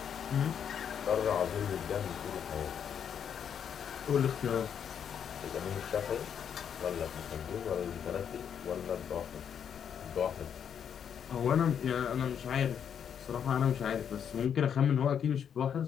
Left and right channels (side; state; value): right; quieter; 8.2 dB